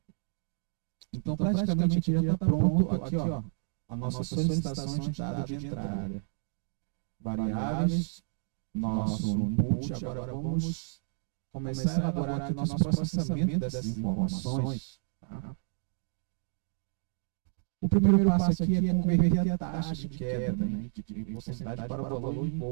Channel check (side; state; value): left; silent; 57 dB below the other